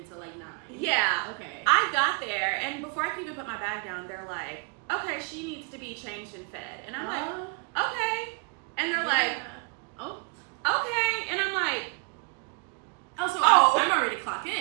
until like 9. Yeah. Okay. I got there and before I could even put my bag down, they're like, okay, she needs to be changed and fed. And I'm like, okay. And they're like, oh, okay. And I'm like, I'm already clocked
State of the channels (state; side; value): quieter; left; 34.7 dB